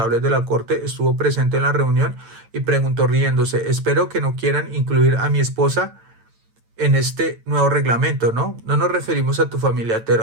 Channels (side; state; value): left; late; 9.0 ms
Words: de la corte, estuvo presente en la reunión y preguntó riéndose: espero que no quieran incluir a mi esposa en este nuevo reglamento, ¿no? No nos referimos a tu familia,